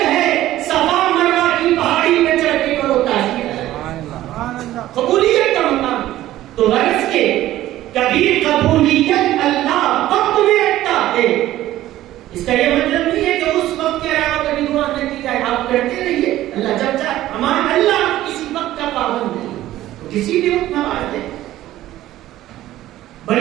ہے. صفا مروا کی پہاڑی پہ چڑھ کے کرو، تاثیر الگ. قبولیت کا مقام تو غرض کے کبھی قبولیت اللہ وقت میں رکھتا ہے. اس کا یہ مطلب نہیں ہے کہ اس وقت کے علاوہ کبھی دعا نہ کی جائے. آپ کرتے رہیے، اللہ جب چاہے. ہمارا اللہ کسی وقت کا پابند نہیں، تو کسی بھی وقت نواز دے.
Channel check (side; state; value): left; quieter; 14.5 dB